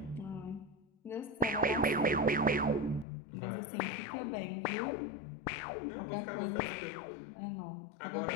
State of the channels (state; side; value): drops out; right; at 3.1 s